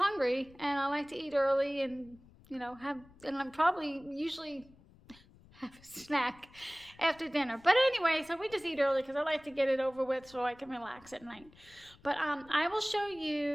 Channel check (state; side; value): noise; left; rumble, 25 dB below the sound